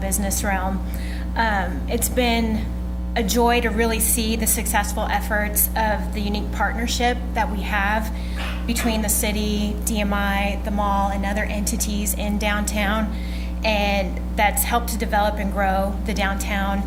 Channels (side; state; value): both; identical; correlation 1.00